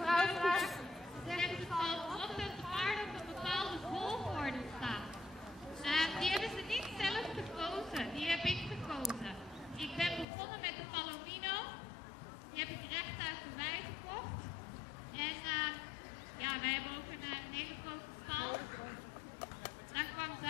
vraagt, zegt het valt op dat de paarden op een bepaalde volgorde staan. Die hebben ze niet zelf gekozen, die heb ik gekozen. Ik ben begonnen met de Palomino, die heb ik recht uit de wei gekocht. een hele grote stal. Dan kwam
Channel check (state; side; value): drops out; right; at 10.2 s